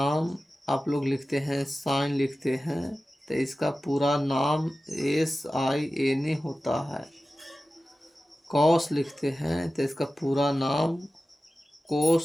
आप लोग लिखते हैं, साइन लिखते हैं तो इसका पूरा नाम SIN होता है। कॉस लिखते हैं तो इसका पूरा नाम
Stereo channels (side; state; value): both; normal; correlation 0.95